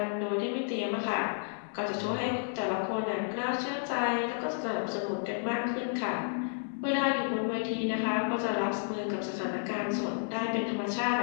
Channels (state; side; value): silent; right; digital silence